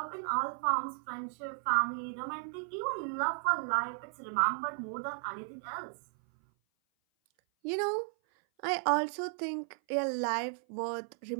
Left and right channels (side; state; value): left; silent; 55 dB below the other